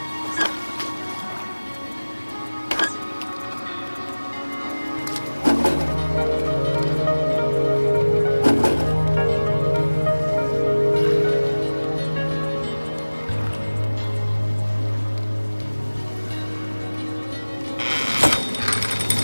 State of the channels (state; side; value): inverted; both; correlation -1.00